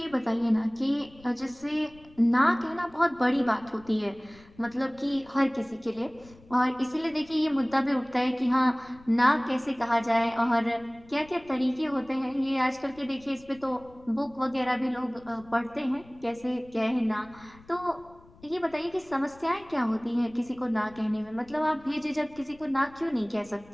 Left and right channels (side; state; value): left; noise; rumble, 25 dB below the sound